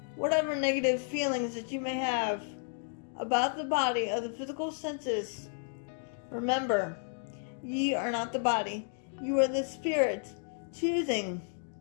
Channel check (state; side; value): silent; right; 56 dB below the other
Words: whatever negative feelings that you may have about the body of the physical senses, remember, ye are not the body. You are the spirit choosing